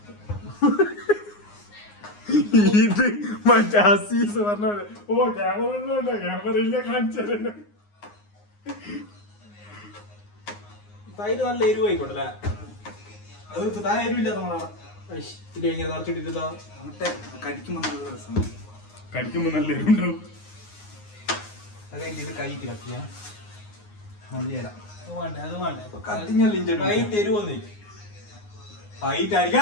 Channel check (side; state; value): right; late; 9.6 ms